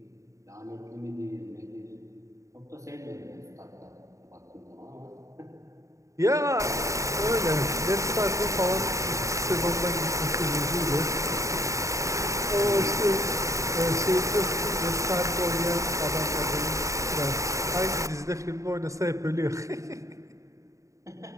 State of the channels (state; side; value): late; left; 0.15 ms